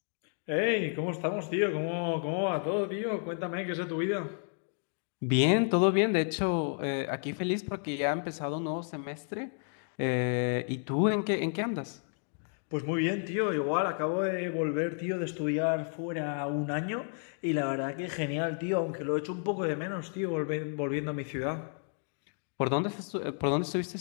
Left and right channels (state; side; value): silent; right; 57 dB below the other